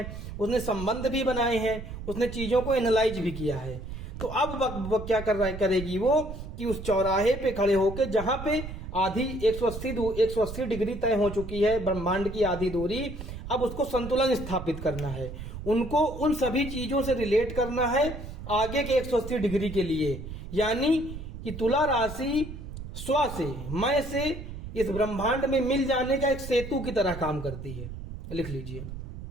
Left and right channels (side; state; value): right; noise; rumble, 9 dB below the sound